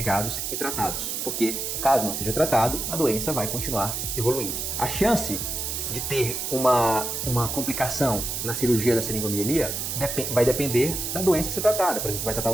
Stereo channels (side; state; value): right; noise; hiss, 3 dB below the sound